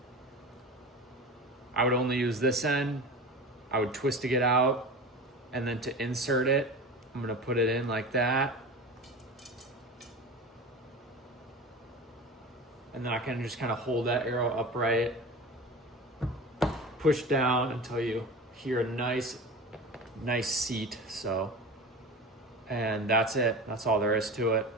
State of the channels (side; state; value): both; normal; correlation 0.32